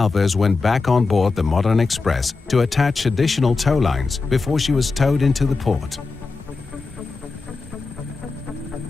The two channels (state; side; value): quieter; right; 4.1 dB